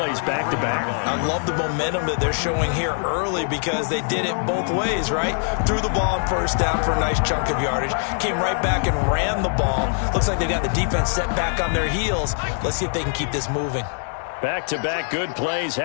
back-to-back. I love the momentum that they're showing here early because they did it both ways, right? Threw the ball on 1st down for a nice chunk of yardage. Came right back and ran the ball. Looks like they got the defense set back on their heels. Let's see if they can keep this moving. Back-to-back good plays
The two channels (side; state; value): right; silent; 58 dB below the other